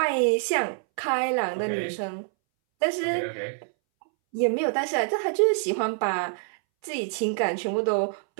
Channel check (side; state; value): left; silent; 61 dB below the other